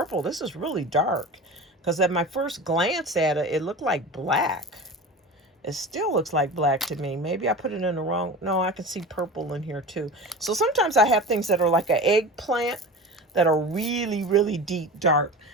This is really dark because at my first glance at it, it looked like black. It still looks like black to me. Maybe I put it in the wrong. No, I can see purple in here too. So sometimes I have things that are like an eggplant that are really, really deep dark.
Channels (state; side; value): normal; both; correlation 0.32